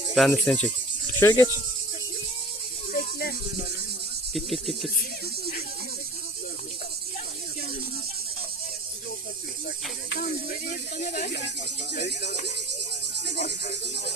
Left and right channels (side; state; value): both; normal; correlation 0.43